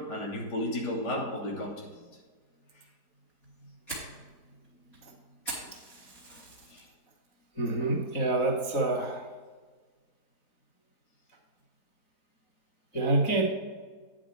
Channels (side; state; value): right; late; 4.2 ms